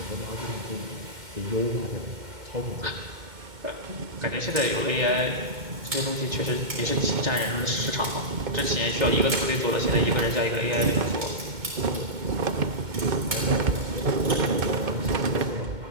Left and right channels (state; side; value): late; left; 2.2 ms